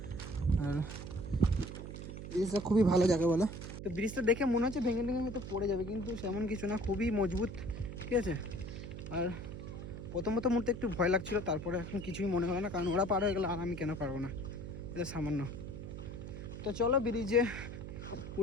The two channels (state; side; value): noise; right; hum, 9 dB below the sound